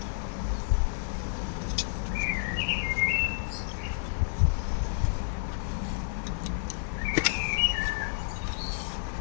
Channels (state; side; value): silent; right; digital silence